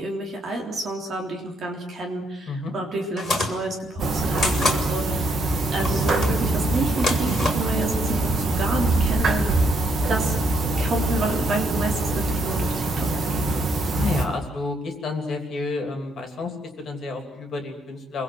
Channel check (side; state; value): both; normal; correlation 0.73